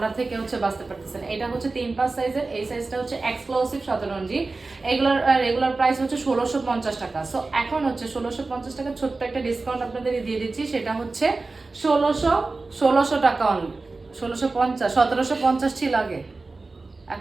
থেকে হচ্ছে বাঁচতে পারতেছেন। এটা হচ্ছে 3-5 সাইজের, এই সাইজটা হচ্ছে এক্সক্লুসিভ শতরঞ্জি। এগুলোর রেগুলার প্রাইস হচ্ছে 1650 টাকা। সো এখন হচ্ছে 1650 টাকা ছোট্ট একটা ডিসকাউন্ট আপনাদের দিয়ে দিচ্ছি। সেটা হচ্ছে 1600 টাকা অনলি। 1650, 1750 ছিল আগে।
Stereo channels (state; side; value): quieter; left; 3.6 dB